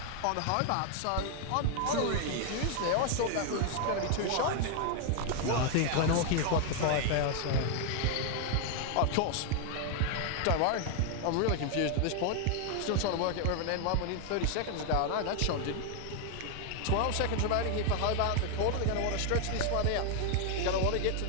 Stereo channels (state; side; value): different; both; correlation 0.00